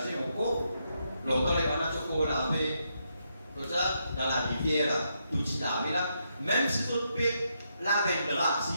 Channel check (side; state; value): both; inverted; correlation -0.80